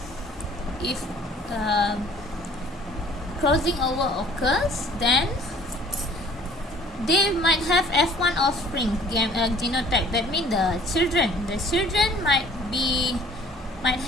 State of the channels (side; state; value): both; normal; correlation 0.53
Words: if crossing over occurs, then they might have F1 offspring genotype. That means the children might